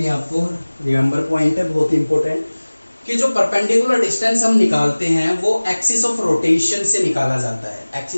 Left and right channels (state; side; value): inverted; both; correlation -1.00